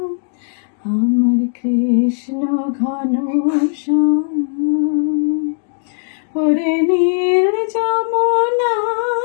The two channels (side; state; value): right; silent; digital silence